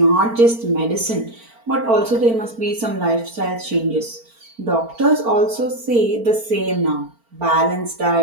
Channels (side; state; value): left; late; 4.4 ms